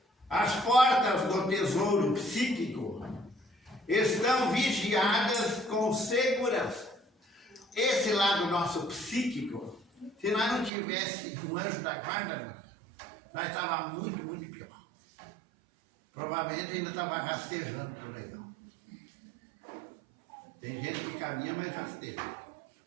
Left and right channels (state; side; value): drops out; left; at 10.7 s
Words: As portas do tesouro psíquico estão vigiadas com segurança. Esse lado nosso psíquico, se nós não tivesse um anjo da guarda, nós estávamos muito, muito pior. Provavelmente ainda estava rastejando por aí. Tem gente que caminha, mas rasteja.